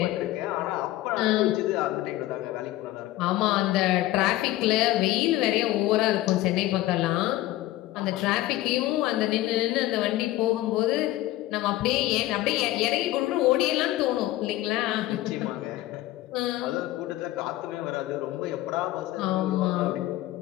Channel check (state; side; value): quieter; right; 16.1 dB